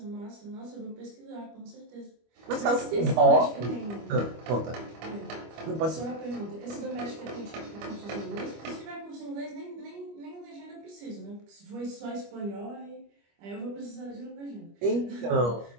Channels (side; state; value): left; late; 25 ms